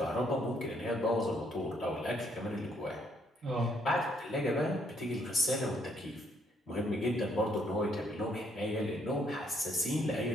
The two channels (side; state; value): both; normal; correlation 0.70